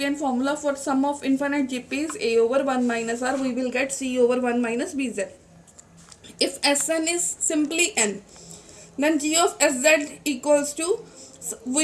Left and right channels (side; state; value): both; identical; correlation 1.00